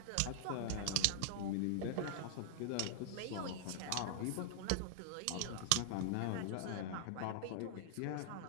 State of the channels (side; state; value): both; different; correlation -0.01